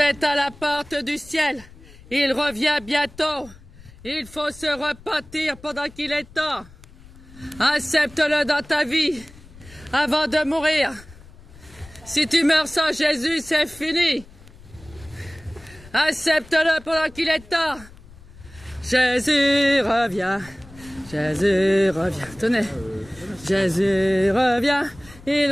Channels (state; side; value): noise; left; rumble, 21 dB below the sound